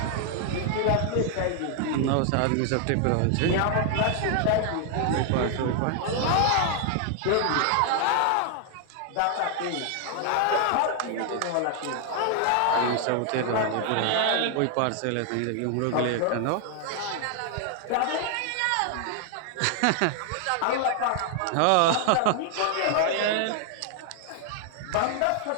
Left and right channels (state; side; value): different; both; correlation 0.00